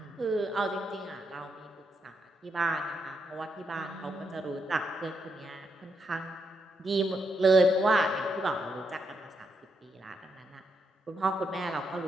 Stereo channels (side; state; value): both; normal; correlation 0.80